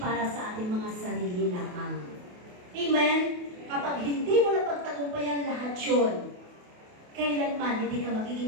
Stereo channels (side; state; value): left; late; 28 ms